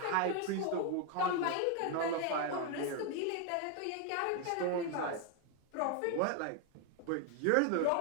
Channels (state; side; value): different; both; correlation 0.01